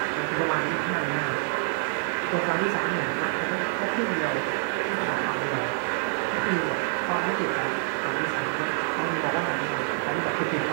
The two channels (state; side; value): silent; left; 60 dB below the other